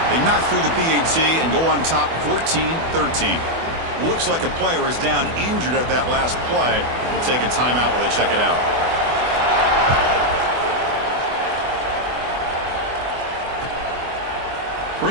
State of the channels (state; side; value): late; left; 24 ms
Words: They knock through the PAT and go on top 14-13. Looks like a player is down injured at that last play. We'll take a timeout while they check it out.